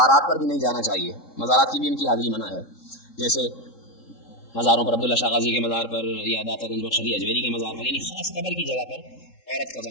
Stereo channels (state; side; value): late; right; 3.7 ms